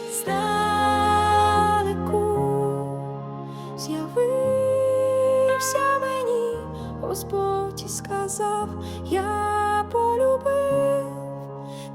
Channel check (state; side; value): identical; both; correlation 1.00